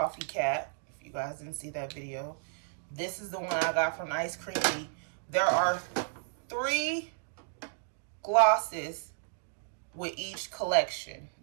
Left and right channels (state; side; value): silent; left; digital silence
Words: Cat. If you guys didn't see that video, this is the one I got from Ice Cream Bee. There are 3 glosses with each collection.